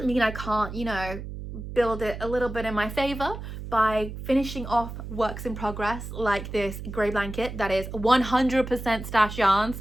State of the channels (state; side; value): noise; right; hum, 9 dB below the sound